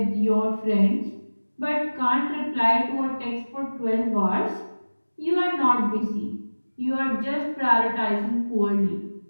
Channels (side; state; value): both; inverted; correlation -1.00